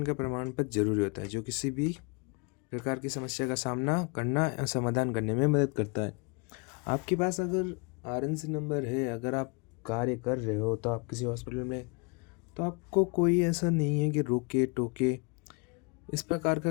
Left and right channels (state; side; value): quieter; right; 32.9 dB